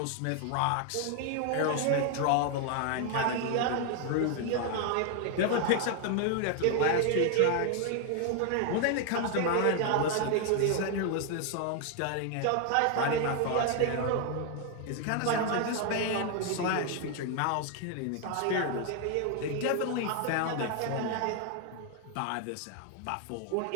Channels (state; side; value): different; both; correlation 0.01